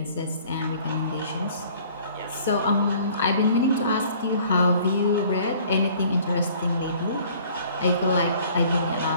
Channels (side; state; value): both; inverted; correlation -0.54